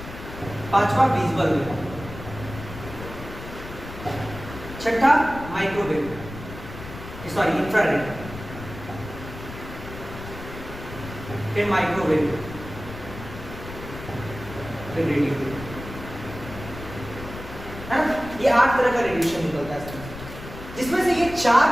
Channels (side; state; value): left; noise; rumble, 12 dB below the sound